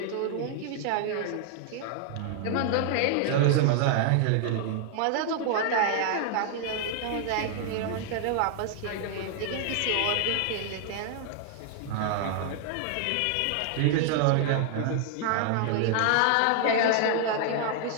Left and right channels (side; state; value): both; different; correlation 0.00